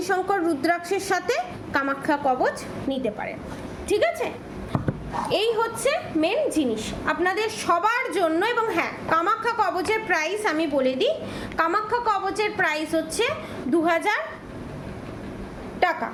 রুদ্রাক্ষের সাথে কামাখ্যা কবচ নিতে পারেন, ঠিক আছে? এই হচ্ছে মেন জিনিস আপনাদের সবার জন্য। এবং হ্যাঁ, কামাখ্যা কবচের প্রাইস আমি বলে দিই, কামাখ্যা কবচের প্রাইস হচ্ছে 2,000 টাকা,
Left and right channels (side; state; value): both; identical; correlation 1.00